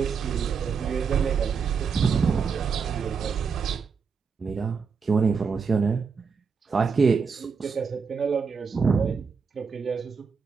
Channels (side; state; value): left; quieter; 5.6 dB